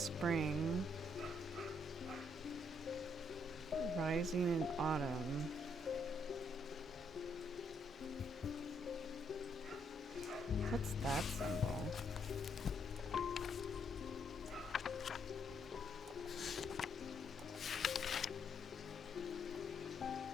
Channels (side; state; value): both; normal; correlation 0.73